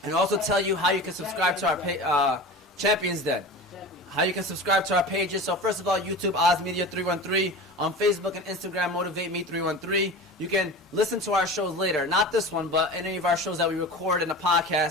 and also tell you how you can subscribe to our Champions Den. How you can subscribe to our pages. So first of all, YouTube, Oz Media 313. On Facebook and Instagram, Motivate Me 313. You can listen to our shows later. Not this one, but any of our shows that we record in the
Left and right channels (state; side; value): normal; both; correlation 0.33